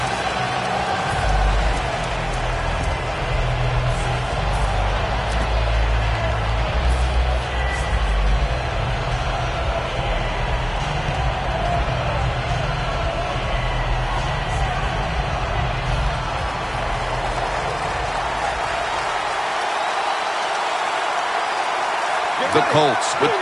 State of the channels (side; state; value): both; identical; correlation 1.00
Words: The Colts with